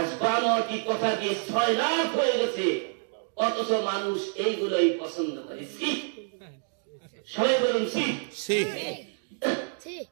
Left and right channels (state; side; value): silent; left; 56 dB below the other